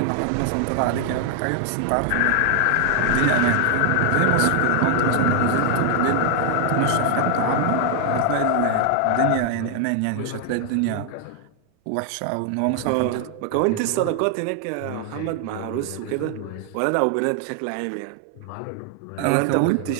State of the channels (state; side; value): different; both; correlation 0.00